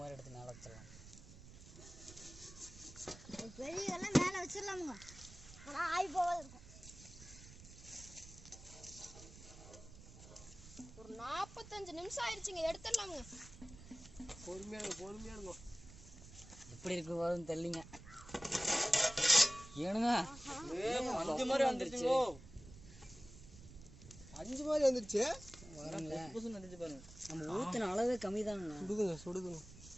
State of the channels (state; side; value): noise; right; rumble, 17 dB below the sound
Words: எடுத்து மேலே வச்சிடலாம். பெரிய எல்லாம் மேலே வச்சிடலாமுங்க. ஆனால் ஆய் போகாது இருக்கும். ஒரு 45 நிமிஷம் ஆயிடுச்சுங்க. எடுத்துடலாமுங்க. பொறுமையாடுங்க. எப்படி இருக்கு போதுன்னு தெரியலிங்க. ஏனுங்க 5 மாதிரி வந்துருச்சு. 5 மாதிரி வந்துருச்சு. வந்துச்சு பாருங்க. நம்ம ஊற்றின அளவே கம்மி தானுங்க. சுடுதுங்க.